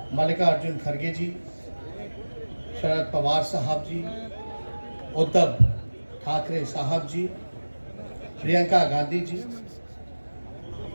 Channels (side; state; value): both; inverted; correlation -1.00